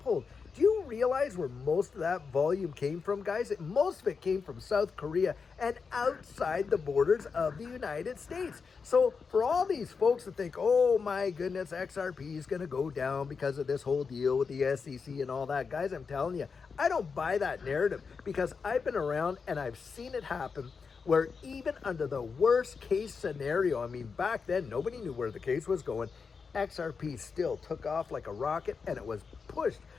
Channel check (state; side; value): quieter; right; 5.3 dB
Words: Do you realize where most of that volume came from, guys? Most of it came from South Korea and outside the borders of the United States. So for all these folks that think, oh my goodness, XRP is going to go down because of this whole deal with the SEC and all that, guys, I'm telling you, I don't buy that narrative because I've been around and I've seen it happen where even under the worst case scenario, I mean, back then, nobody knew where the case was going. XRP still took off like a rocket and it was pushed.